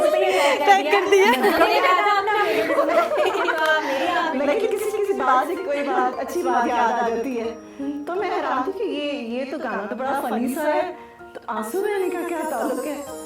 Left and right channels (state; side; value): identical; both; correlation 1.00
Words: पे ही टैग कर दिया। लेकिन किसी बात से कोई बात अच्छी बात याद आ जाती है, तो मैं हैरान थी कि ये तो गाना तो बड़ा फनी सा है, तो आंसू बहने का क्या ताल्लुक है।